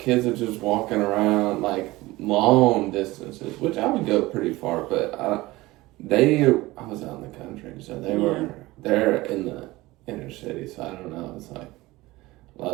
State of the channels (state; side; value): quieter; left; 19.6 dB